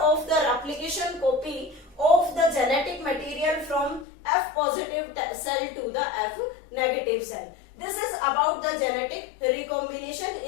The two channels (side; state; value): right; drops out; at 4.0 s